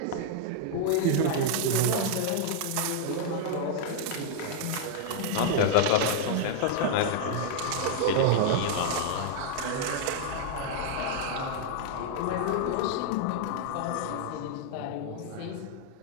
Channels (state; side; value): different; both; correlation -0.01